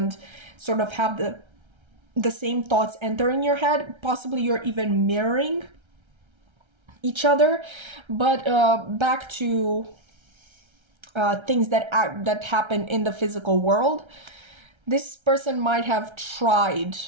sort of have the same thoughts enter in your head. Possibly you're even mirroring each other. But back to things that happen in the physical world. This person might have tried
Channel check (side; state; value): left; late; 1.3 ms